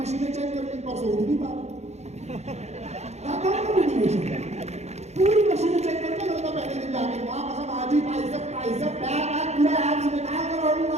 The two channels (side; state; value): left; late; 0.32 ms